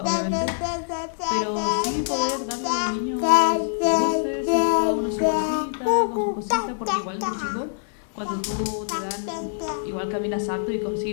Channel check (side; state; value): right; silent; digital silence